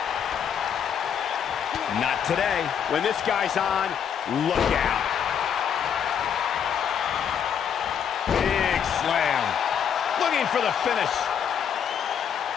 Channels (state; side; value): quieter; right; 8.2 dB